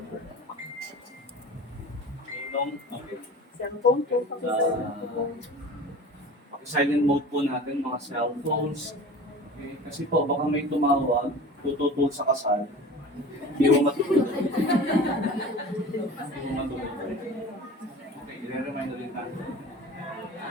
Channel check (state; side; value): normal; both; correlation 0.38